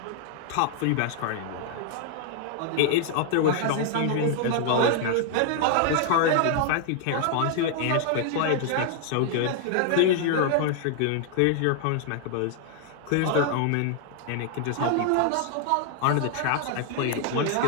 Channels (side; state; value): both; different; correlation 0.00